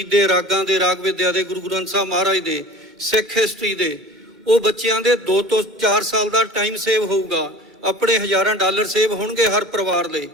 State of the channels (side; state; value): both; normal; correlation 0.40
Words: ਦੇ, ਰਾਗਾਂ ਦੇ, ਰਾਗ ਵਿਦਿਆ ਦੇ, ਗੁਰੂ ਗ੍ਰੰਥ ਸਾਹਿਬ ਮਹਾਰਾਜ ਦੇ, ਸਿੱਖ ਹਿਸਟਰੀ ਦੇ, ਉਹ ਬੱਚਿਆਂ ਦੇ 2 ਤੋਂ 4 ਸਾਲ ਦਾ ਟਾਈਮ ਸੇਵ ਹੋਊਗਾ, ਆਪਣੇ ਹਜ਼ਾਰਾਂ ਡਾਲਰ ਸੇਵ ਹੋਣਗੇ ਹਰ ਪਰਿਵਾਰ ਲਈ।